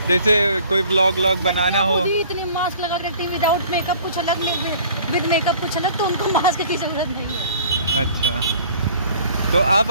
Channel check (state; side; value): inverted; both; correlation -0.51